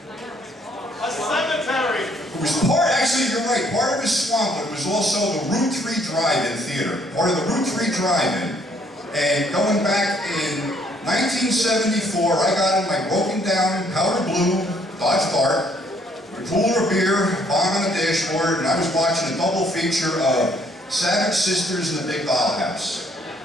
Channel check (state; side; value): normal; both; correlation 0.65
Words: A cemetery! It was part, actually you're right, part of it was swamp, but it was also the Route 3 Drive-In Theater. Part of the Route 3 Drive-In. And going back in 1974, I got in my broken down powder blue Dodge Dart, a cooler of beer, bomb on the dashboard, and I was watching a double feature of Savage Sisters and the Big Dollhouse.